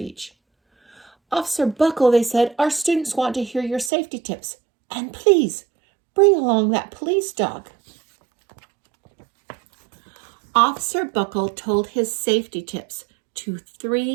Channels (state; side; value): drops out; left; at 3.9 s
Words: "Officer Buckle," they said, "our students want to hear your safety tips. And please, bring along that police dog." Officer Buckle told his safety tips to